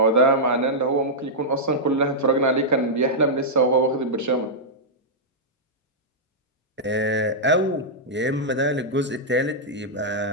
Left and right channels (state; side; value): normal; both; correlation -0.09